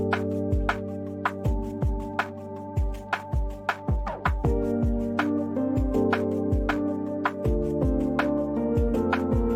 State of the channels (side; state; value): both; identical; correlation 1.00